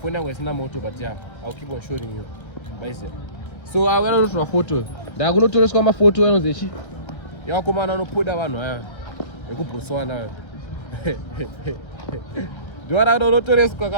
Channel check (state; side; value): late; right; 1.3 ms